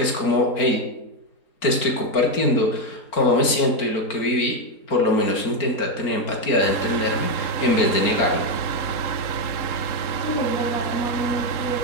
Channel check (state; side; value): late; right; 4.4 ms